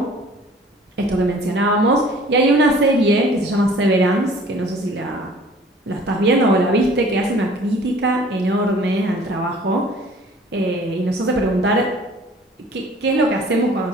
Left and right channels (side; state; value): both; normal; correlation 0.51